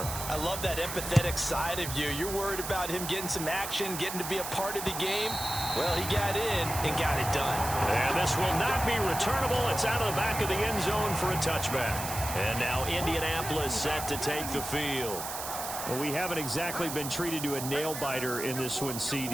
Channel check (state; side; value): noise; right; hiss, 6 dB below the sound